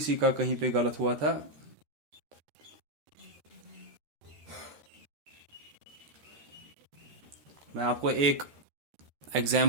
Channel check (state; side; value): late; left; 14 ms